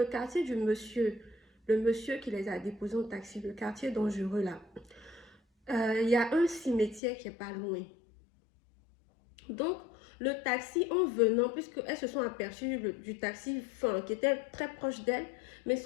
quartier du monsieur, le monsieur qui les a déposés en taxi, le quartier dangereux là, il y a un cimetière qui est pas loin. Donc, le taxi, en venant, puisqu'elles se sont aperçues du taxi qui était très proche d'elle, mais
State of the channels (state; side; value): drops out; right; at 7.0 s